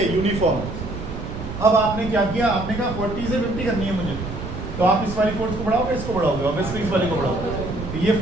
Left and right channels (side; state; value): right; noise; rumble, 8 dB below the sound